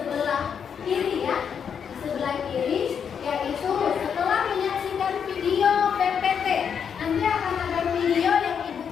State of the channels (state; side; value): quieter; right; 7.3 dB